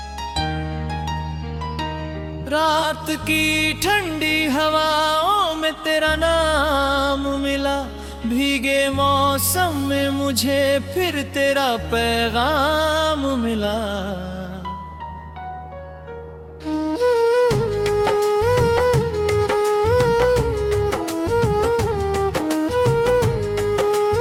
रात की ठंडी हवाओं में तेरा नाम मिला, भीगे मौसम में मुझे फिर तेरा पैगाम मिला।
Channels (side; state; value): both; identical; correlation 1.00